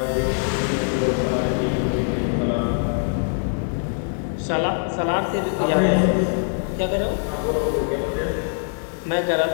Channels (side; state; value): right; silent; digital silence